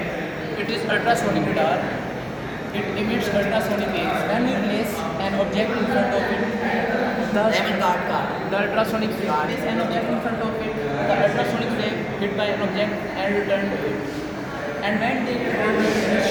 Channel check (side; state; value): both; identical; correlation 1.00